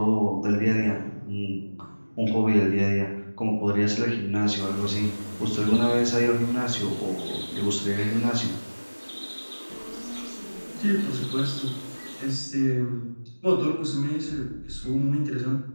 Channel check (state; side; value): inverted; both; correlation -1.00